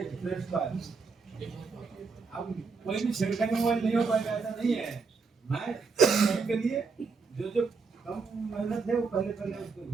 फ्रेश का है। अब कोई भी छिड़काने मोबाइल नहीं हो पाएगा ऐसा नहीं है, मैं के लिए जो जो कम मेहनत है वो पहले पहले उसको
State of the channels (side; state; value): left; quieter; 4.7 dB